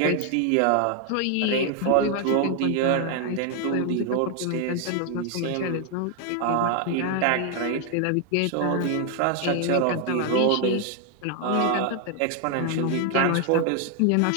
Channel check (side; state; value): both; different; correlation 0.00